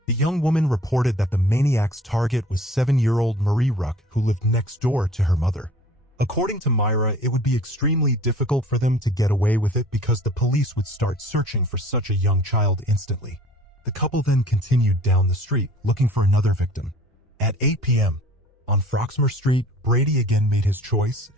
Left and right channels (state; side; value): normal; both; correlation 0.48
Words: The young woman reported that the maniac's target was 7-year-old Marie Ruck, who lived next door to her mother. According to Myra, it would be extremely difficult for them to get away with it because the police would start searching for such a young child instantly. The couple then continued down the street, looking for another victim. At 8 p.m., on Froxmore Street, Brady again made his choice,